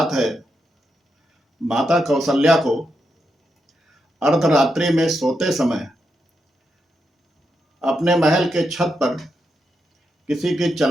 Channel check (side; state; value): both; normal; correlation 0.84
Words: है। माता कौशल्या को अर्धरात्रि में सोते समय अपने महल के छत पर किसी के